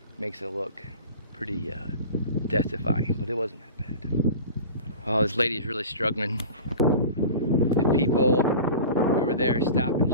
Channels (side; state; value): both; inverted; correlation -0.37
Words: makes it look pretty death-defying, but it wasn't that bad. Oh, this lady is really struggling. The people over there stop and